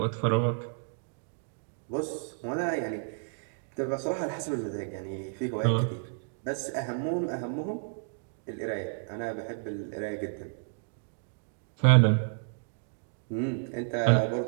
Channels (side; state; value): left; silent; digital silence